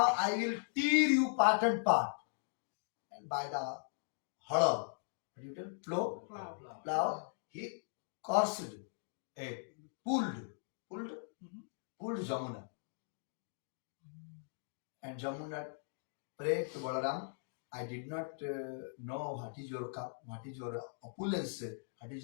I will tear you part and part." And by the hollow, plow, he cursed, pulled Jamuna. And Jamuna prayed to Balaram, "I did not know what is your opulence, what is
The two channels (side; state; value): right; silent; digital silence